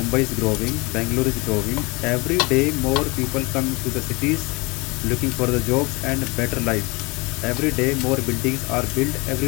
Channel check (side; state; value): right; quieter; 26.6 dB